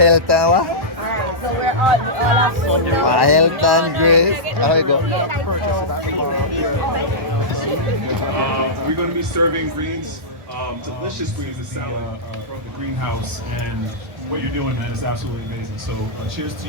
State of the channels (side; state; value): left; late; 1.2 ms